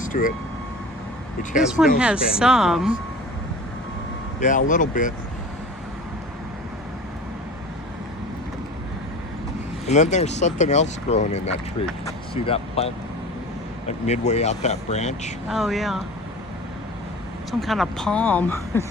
to it. Which has This one no has Spanish some. moss. Yeah, a little bit. And then there's something else growing in that tree. See that plant? Like midway out that branch? Oh, yeah. Some kind of palm,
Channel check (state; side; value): normal; both; correlation 0.38